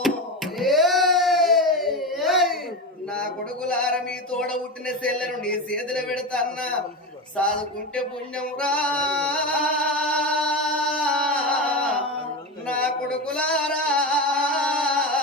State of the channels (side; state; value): both; normal; correlation 0.20